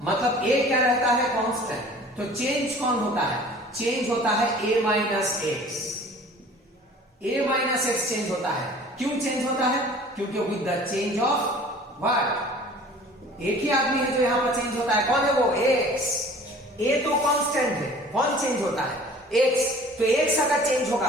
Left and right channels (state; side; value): normal; both; correlation 0.47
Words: मतलब A क्या रहता है कांस्टेंट, तो चेंज कौन होता है, चेंज होता है A minus x, A minus x change होता है। क्यों चेंज होता है, क्योंकि with the change of what, एक ही आदमी है जो यहां पर चेंज होता है, कौन है वो x, A तो कांस्टेंट है, कौन चेंज होता है x, तो x अगर चेंज होगा